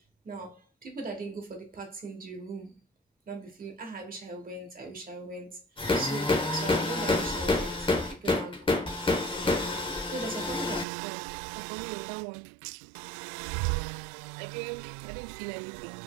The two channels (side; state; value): left; drops out; at 10.9 s